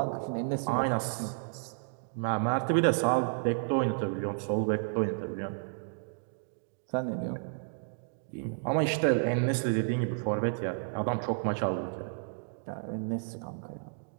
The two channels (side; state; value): left; silent; digital silence